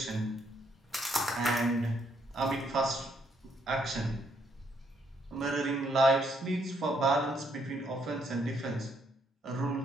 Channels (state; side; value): normal; both; correlation 0.72